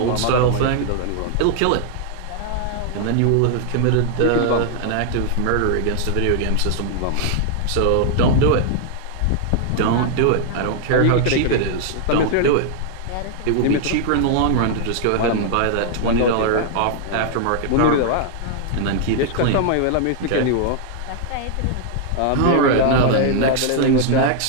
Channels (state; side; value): different; both; correlation 0.00